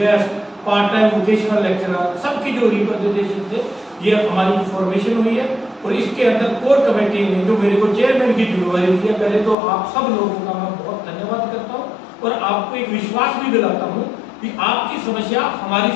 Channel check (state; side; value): drops out; right; at 9.6 s